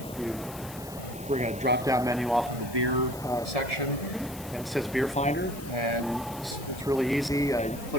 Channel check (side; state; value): left; noise; hiss, 17 dB below the sound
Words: we're going to drop down menu off of the beer section, and it says Beer Finder, and it's really easy.